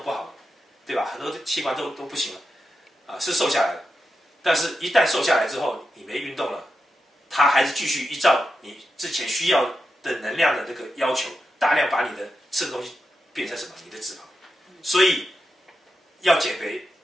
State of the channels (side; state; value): both; normal; correlation 0.88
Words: 不好了，对吧？很多器官都不行了啊，是瘦下来了。但是一旦瘦下来之后，你没运动了，它还是继续依照你之前需要的能量的这个要求，大量把你的吃的东西变成什么？你的脂肪。所以要减肥，